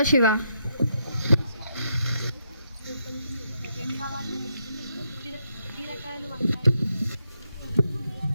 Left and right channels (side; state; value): both; inverted; correlation -0.79